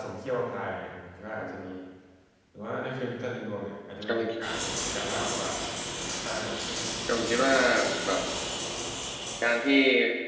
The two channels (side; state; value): both; identical; correlation 1.00